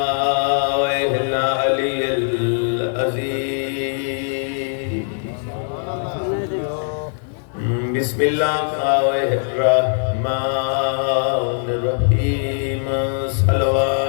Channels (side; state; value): right; silent; 60 dB below the other